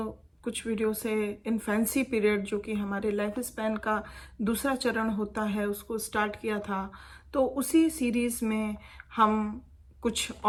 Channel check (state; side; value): identical; both; correlation 1.00